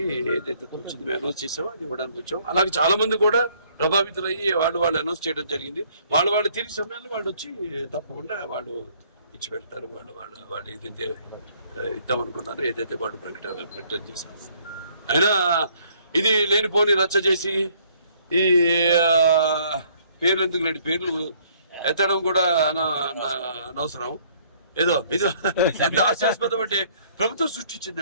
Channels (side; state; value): both; inverted; correlation -0.63